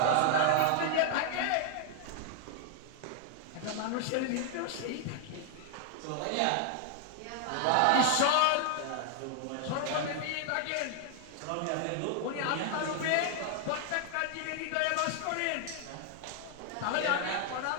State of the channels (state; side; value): different; both; correlation 0.00